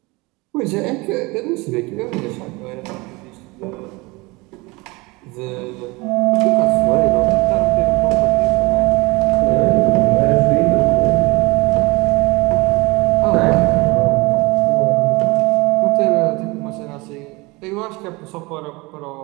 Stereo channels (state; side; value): quieter; left; 24.3 dB